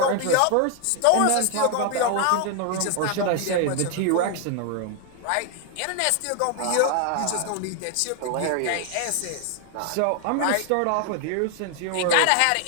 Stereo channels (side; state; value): both; different; correlation 0.00